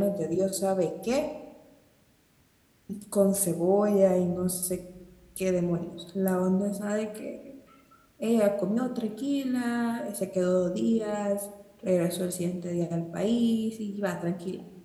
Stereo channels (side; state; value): both; identical; correlation 1.00